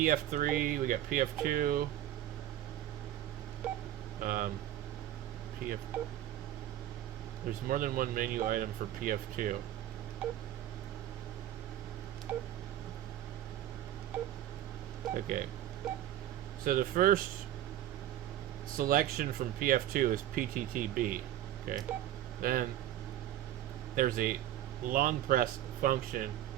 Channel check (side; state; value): left; quieter; 12.6 dB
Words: we got PF2. PF. There's more than one menu item for PF2. Okay. So the first selection from PF2 is PTTB. Okay. Then there's a long press function